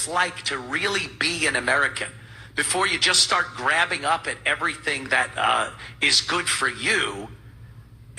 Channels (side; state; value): both; identical; correlation 1.00